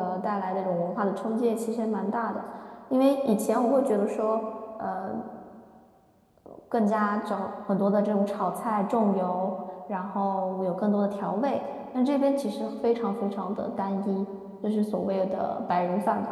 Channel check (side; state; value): both; identical; correlation 1.00